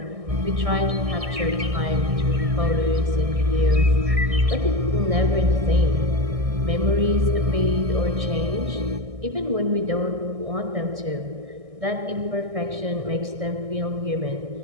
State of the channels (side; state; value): left; late; 1.6 ms